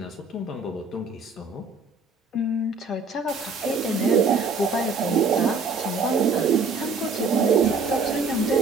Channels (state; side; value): quieter; left; 4.2 dB